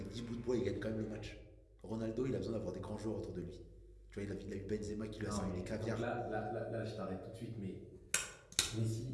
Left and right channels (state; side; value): identical; both; correlation 1.00